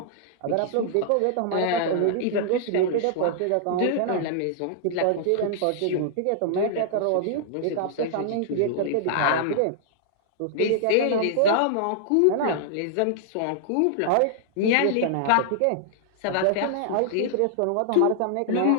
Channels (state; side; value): different; both; correlation -0.01